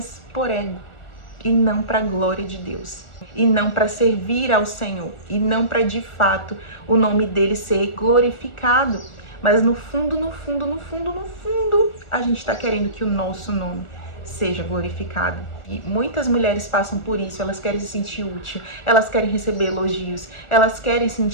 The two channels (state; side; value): late; right; 1.4 ms